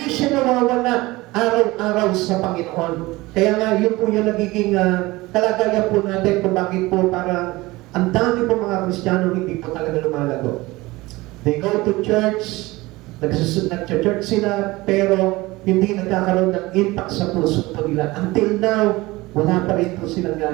siya nawawala araw-araw sa Panginoon. Kaya nga, yun po yung nagiging kalagayan po natin kung bakit po parang ang dami po mga Kristiyano hindi po talaga lumalago. They go to church, nag-church sila, pero hindi nagkakaroon ng impact sa puso po nila. Until now, wala pa rin po silang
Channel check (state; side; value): quieter; left; 20.6 dB